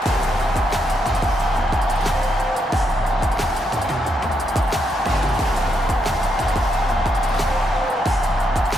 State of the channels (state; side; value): normal; both; correlation 0.79